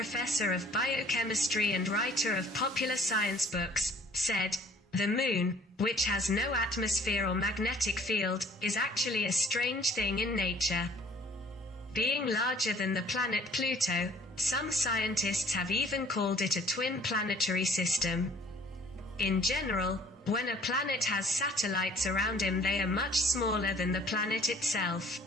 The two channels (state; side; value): normal; both; correlation 0.55